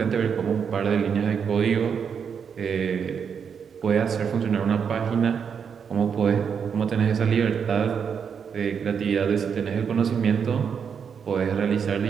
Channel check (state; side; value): quieter; left; 6.9 dB